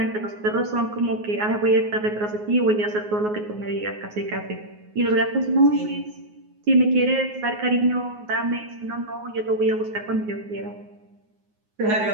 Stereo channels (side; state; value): left; late; 9.5 ms